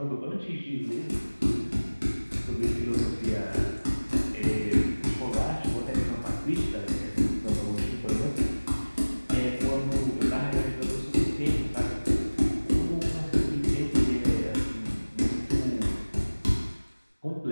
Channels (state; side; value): inverted; both; correlation -1.00